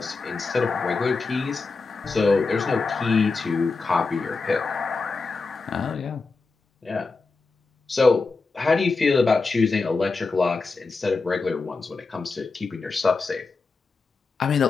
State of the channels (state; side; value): quieter; right; 4.1 dB